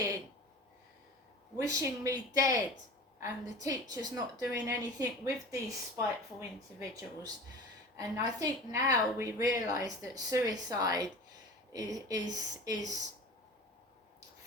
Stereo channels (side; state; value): both; normal; correlation 0.36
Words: wishing me dead, and the teachers not doing anything with these spiteful individuals. And I think now we realise that suicide is